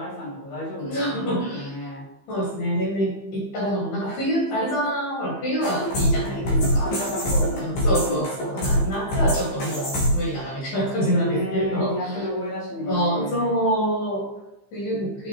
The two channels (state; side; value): late; right; 15 ms